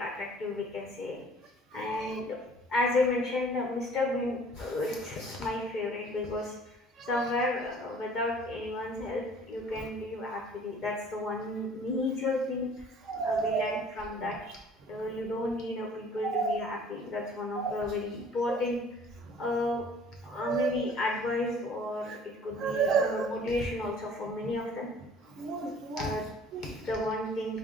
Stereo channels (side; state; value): both; normal; correlation 0.52